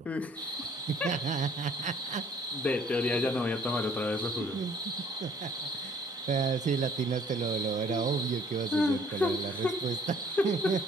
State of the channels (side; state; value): both; normal; correlation 0.58